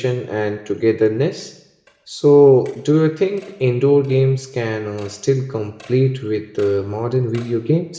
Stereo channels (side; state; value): both; identical; correlation 1.00